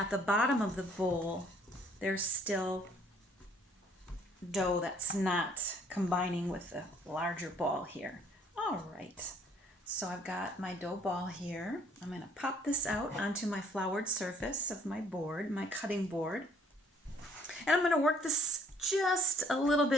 the bottom of the bowl, there's still dough that's not combining with the larger ball here. All right, so I've got my dough ball here. I'm going to pop this out onto my floured surface of my board, my cutting board. And I'm going to work this just a little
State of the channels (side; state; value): both; normal; correlation 0.62